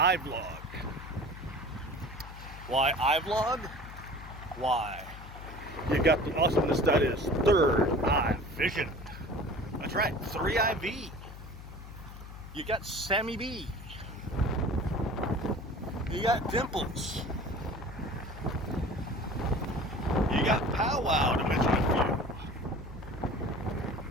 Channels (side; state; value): left; noise; hum, 13 dB below the sound